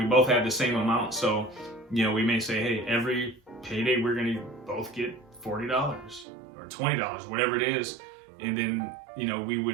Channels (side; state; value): left; drops out; at 6.2 s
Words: both have the same amount. So, we may say, hey, every payday we're going to both get $40 or $20, whatever it is. And then,